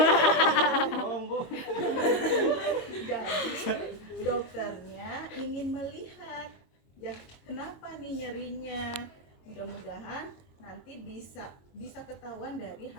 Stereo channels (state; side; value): late; right; 22 ms